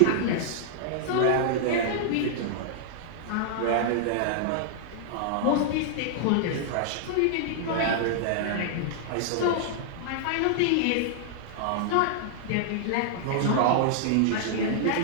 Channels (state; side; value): different; both; correlation -0.01